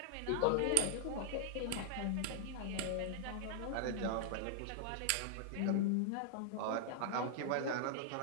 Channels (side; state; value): both; different; correlation -0.01